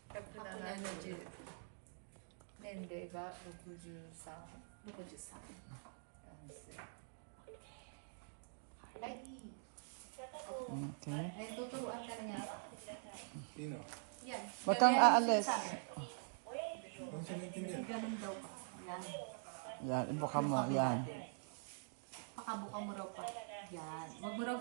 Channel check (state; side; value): silent; left; digital silence